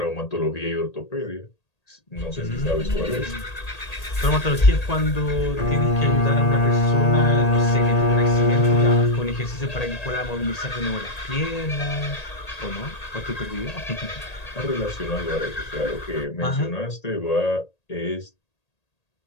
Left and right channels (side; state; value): right; late; 1.8 ms